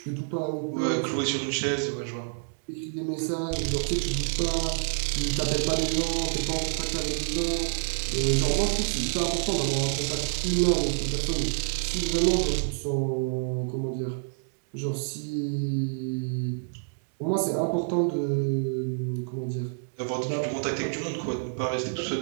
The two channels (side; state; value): left; silent; digital silence